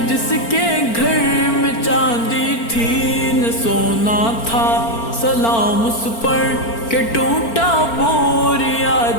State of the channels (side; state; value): right; late; 4.4 ms